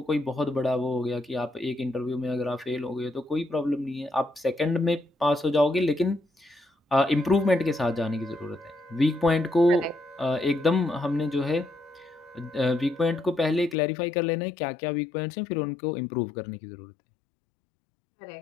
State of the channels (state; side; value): drops out; right; at 13.8 s